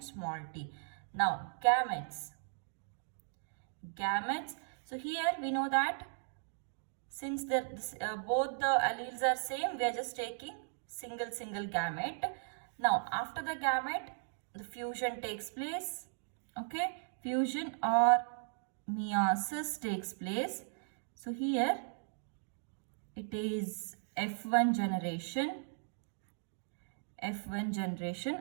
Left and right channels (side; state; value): left; silent; digital silence